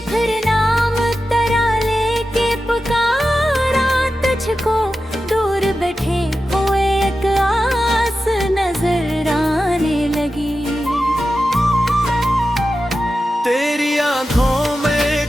फिर नाम तरा लेके पुकारा तुझको, दूर बैठे हुए एक आस नजर आने लगी। तेरी आंखों में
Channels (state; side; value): normal; both; correlation 0.92